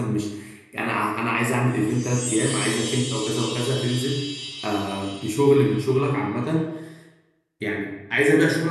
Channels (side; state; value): both; identical; correlation 1.00